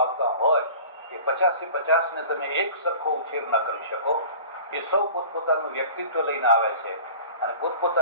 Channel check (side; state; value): both; inverted; correlation -0.42